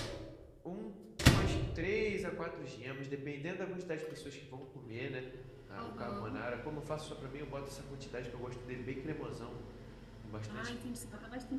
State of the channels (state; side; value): identical; both; correlation 1.00